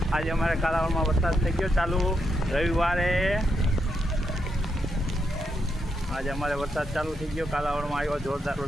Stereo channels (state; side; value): normal; both; correlation 0.81